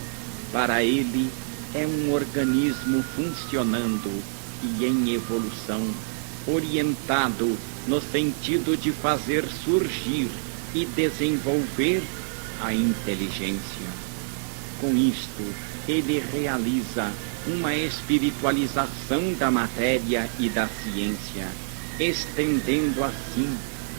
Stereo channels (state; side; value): silent; left; digital silence